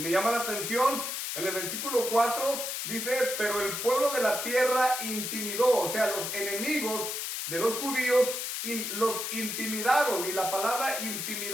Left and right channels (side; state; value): left; noise; hiss, 3 dB below the sound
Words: me llama la atención, en el versículo 4 dice, pero el pueblo de la tierra intimidó, o sea, los enemigos de los judíos los intimidaron. Y la palabra